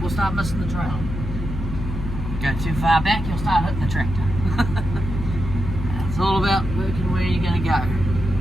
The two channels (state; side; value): noise; left; hum, 6 dB below the sound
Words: we'll start missing the trail. Go too far back, you'll start hitting the tractor. all about working where you're going to go.